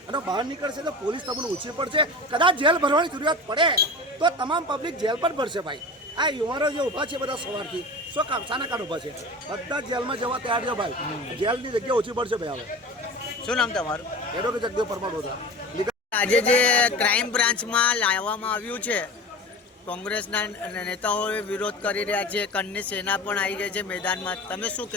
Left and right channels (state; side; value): normal; both; correlation 0.33